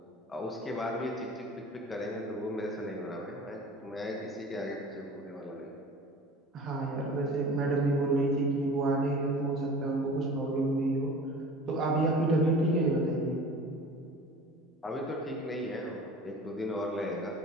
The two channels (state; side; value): normal; both; correlation 0.41